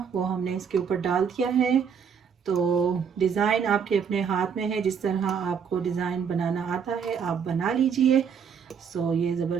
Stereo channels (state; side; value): quieter; left; 6.9 dB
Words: वो हमने इसके ऊपर डाल दिया है। तो डिज़ाइन आपके अपने हाथ में है, जिस तरह आपको डिज़ाइन बनाना आता है आप बना लीजिए। सो ये